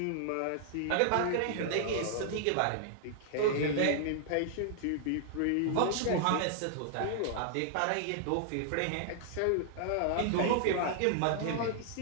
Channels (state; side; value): different; both; correlation -0.01